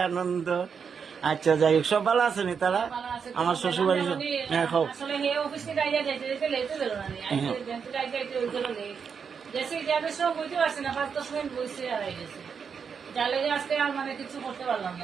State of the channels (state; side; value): quieter; left; 6.4 dB